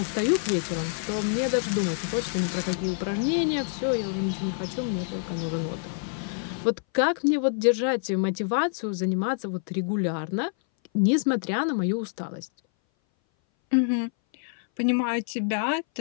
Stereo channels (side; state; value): right; silent; 58 dB below the other